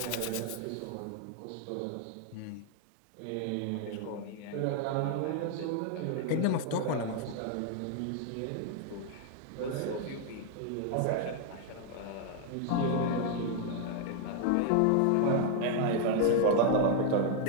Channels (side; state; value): both; different; correlation 0.00